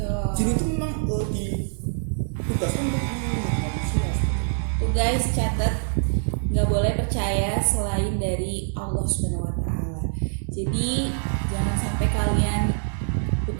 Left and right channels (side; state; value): left; silent; digital silence